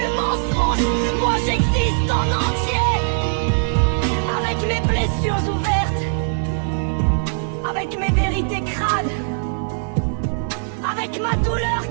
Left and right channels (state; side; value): silent; left; 56 dB below the other